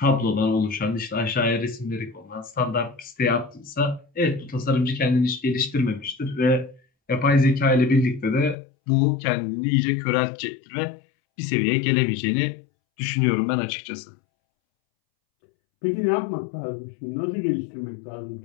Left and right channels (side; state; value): right; drops out; at 8.6 s